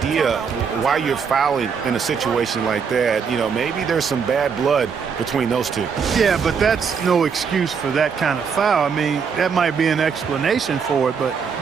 why you're fouling in a situation like that. You know, maybe there's some bad blood between those two. Yeah, but that's no excuse for that kind of foul. I mean, that might be an explanation for it, but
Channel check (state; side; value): quieter; left; 6.2 dB